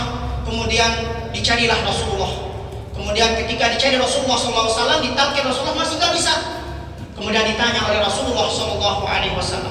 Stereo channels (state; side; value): identical; both; correlation 1.00